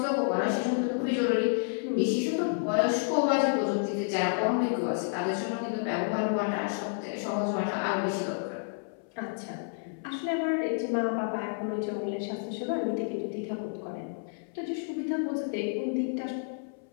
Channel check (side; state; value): right; silent; 58 dB below the other